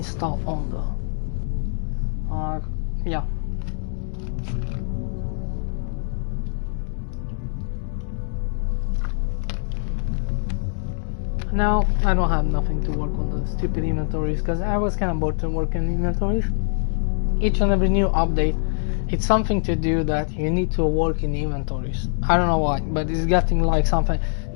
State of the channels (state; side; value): silent; right; digital silence